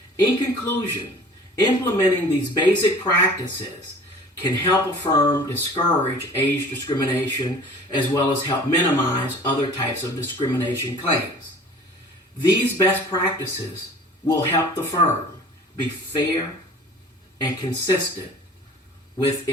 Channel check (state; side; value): normal; both; correlation 0.46